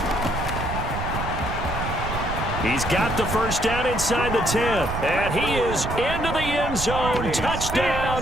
He's got the first down inside the 10. And he is into the end zone. Touchdown,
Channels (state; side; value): noise; right; rumble, 5 dB below the sound